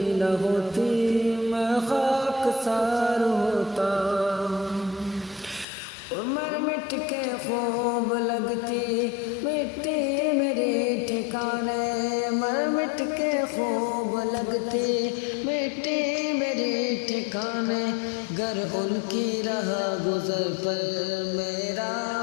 ہوتی میں خاک سار ہوتا، مر مٹ کے خوب لگتی مٹی میری ٹھکانے، مر مٹ کے خوب لگتی مٹی میری ٹھکانے، گر ان کی راہ گزر پر میرا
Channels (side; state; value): right; drops out; at 5.7 s